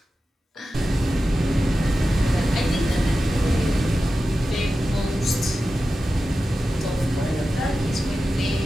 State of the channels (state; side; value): normal; both; correlation 0.93